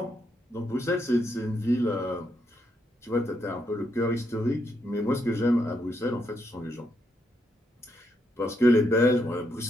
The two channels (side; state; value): both; normal; correlation 0.78